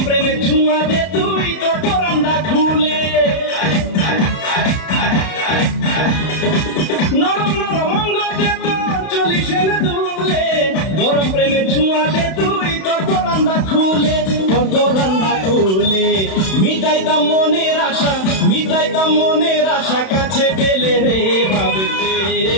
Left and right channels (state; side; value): late; right; 31 ms